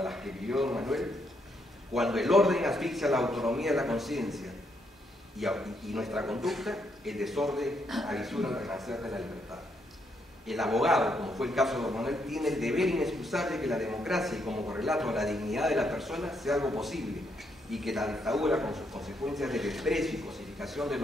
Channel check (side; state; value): both; normal; correlation 0.76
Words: las que vivió don Manuel, cuando el orden asfixia la autonomía de la conciencia y nuestra conducta, el desorden avisura el renacer de la libertad. El abogado, como fue el caso de don Manuel, tiene el deber inexcusable que la democracia y como correlato a la dignidad de la persona sea algo posible y que la dictadura, con sus consecuencias de desprecio y cosificación de